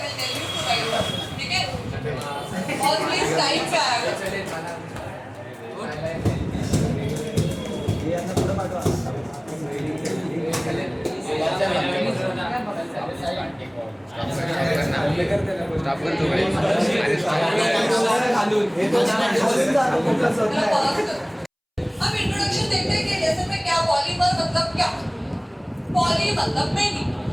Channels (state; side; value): identical; both; correlation 1.00